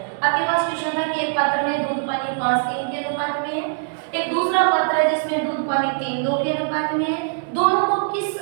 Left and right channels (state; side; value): silent; left; digital silence